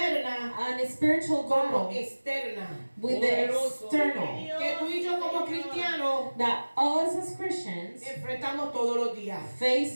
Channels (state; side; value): inverted; both; correlation -1.00